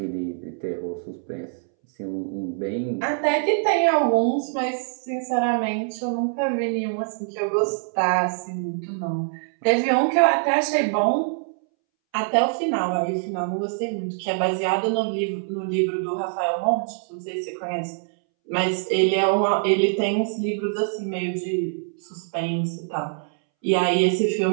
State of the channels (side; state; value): left; silent; 63 dB below the other